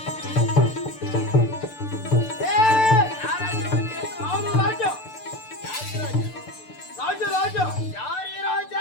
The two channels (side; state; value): right; late; 6.8 ms